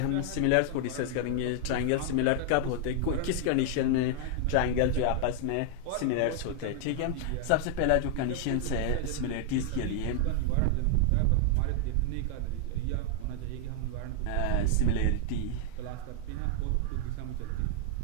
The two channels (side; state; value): both; different; correlation 0.00